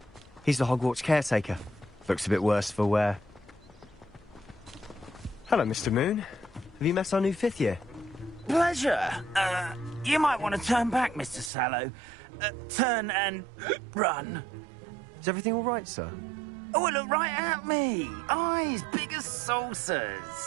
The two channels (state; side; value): drops out; left; at 11.5 s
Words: He's the Hogwarts caretaker. Looks a bit worse for wear. Hello, Mr. Moon. Have you met our new 5th year? Pleasure. You might want to turn back, Mr. Sallow. Turn and run. Is everything all right, sir? Oh, look right at me. Eyes big as